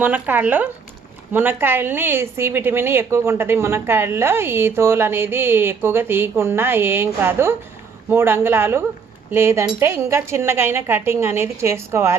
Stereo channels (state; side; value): quieter; left; 5.7 dB